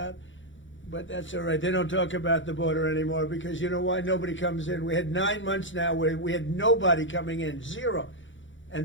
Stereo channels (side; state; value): right; late; 0.55 ms